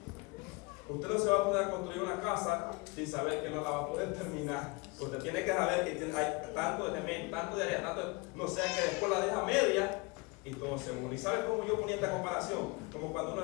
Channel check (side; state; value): right; quieter; 26.6 dB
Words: Usted no se va a poder construir una casa sin saber que no la va a poder terminar. Usted tiene que saber que hay tanto de elemento, tanto de área, tanto, no sea que después la deja media y todo se une. ¿Y sabe cómo yo ponía esta comparación? Como cuando